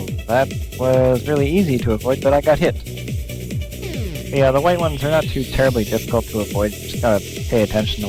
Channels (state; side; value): identical; both; correlation 1.00